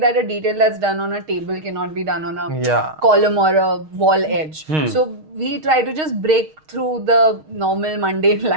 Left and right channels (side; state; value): left; late; 6.4 ms